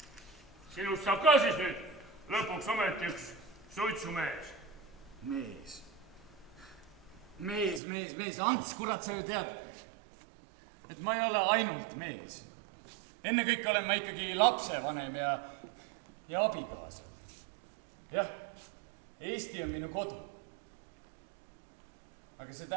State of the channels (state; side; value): drops out; left; at 7.8 s